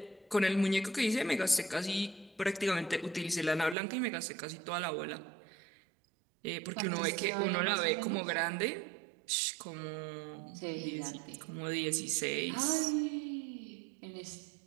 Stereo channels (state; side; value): drops out; left; at 3.8 s